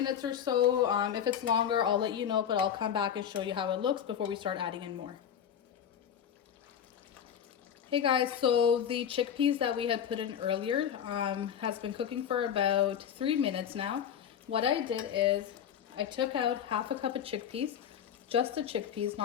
or so. If it's longer, I'll let you know, but I'll come back and show you how it looks before we start adding in more. Hey guys, so the chickpeas that we had put in earlier has been cooking for about 3 minutes now. What I did is I took out half a cup of chickpeas, just the chickpeas,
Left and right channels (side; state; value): right; quieter; 8.8 dB